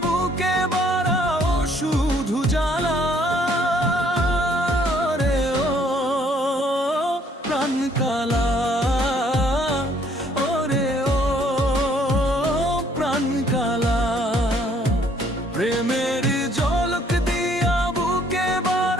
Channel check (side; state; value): both; normal; correlation 0.63